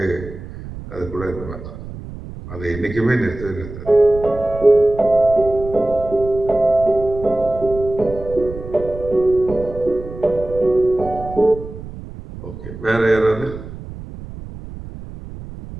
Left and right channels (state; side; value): noise; right; rumble, 12 dB below the sound